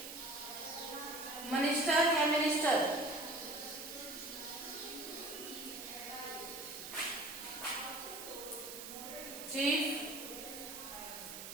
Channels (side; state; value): right; noise; hiss, 9 dB below the sound